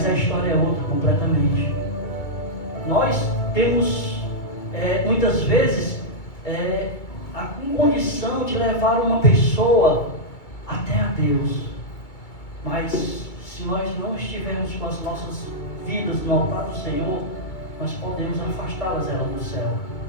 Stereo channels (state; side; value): late; right; 2.3 ms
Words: a história é outra completamente. Nós temos muitas vezes a condição de levar uma pessoa até a Deus, mas se nós não estivermos com as nossas vidas no altar do Senhor, nós podemos afastá-las do céu,